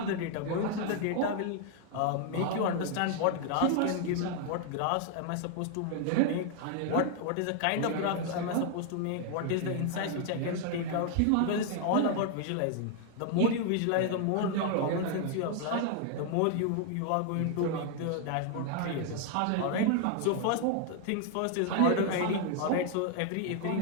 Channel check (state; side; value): different; both; correlation 0.00